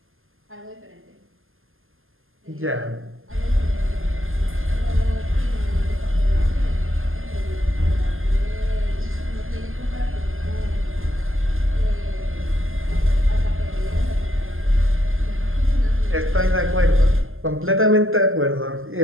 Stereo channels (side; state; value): left; late; 0.60 ms